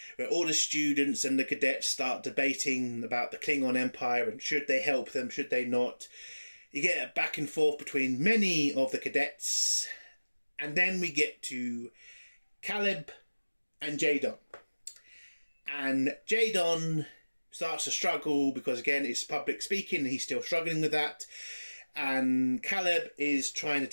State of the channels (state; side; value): inverted; both; correlation -1.00